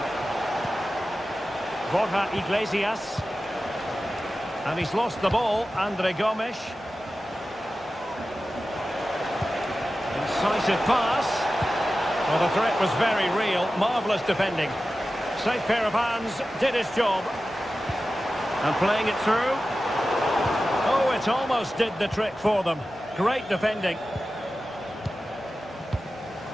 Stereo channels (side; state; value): both; normal; correlation 0.94